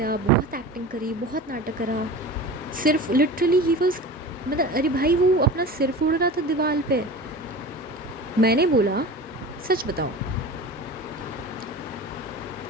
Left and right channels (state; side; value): normal; both; correlation 0.34